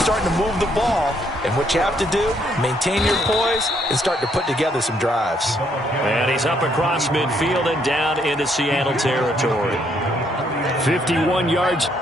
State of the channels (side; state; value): both; normal; correlation 0.71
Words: starting to move the ball, and what you have to do, maintain your poise and start to put together some drives. And he's up across midfield and down into Seattle territory. 51 yards